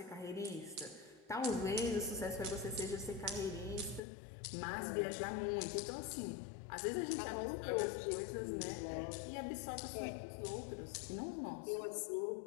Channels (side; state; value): right; drops out; at 4.0 s